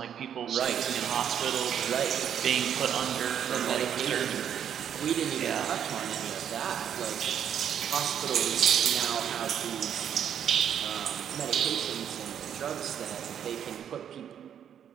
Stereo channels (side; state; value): left; quieter; 9.1 dB